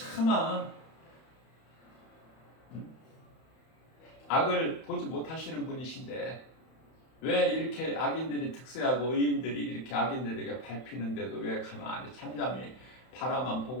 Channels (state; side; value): late; right; 31 ms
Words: 악을 보지 못하시는 분이신데 왜 이렇게 악인들이 득세하고 의인들이 이렇게 악인들에게 밟히는데도 왜 가만히 잠잠히 바라만